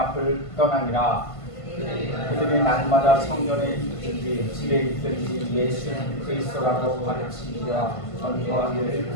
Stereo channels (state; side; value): late; right; 1.5 ms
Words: 떠나니라. 그들이 날마다 성전에 있든지 집에 있든지 예수는 그리스도라고 가르치기와 전도하기를